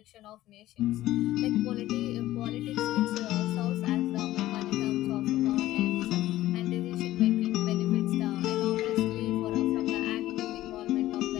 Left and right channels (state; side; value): quieter; right; 15.2 dB